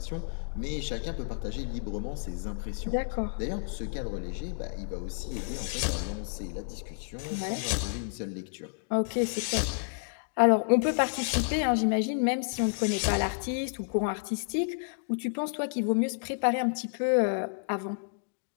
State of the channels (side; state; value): right; silent; digital silence